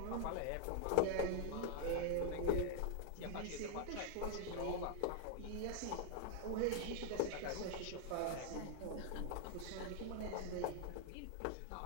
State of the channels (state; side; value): different; both; correlation 0.00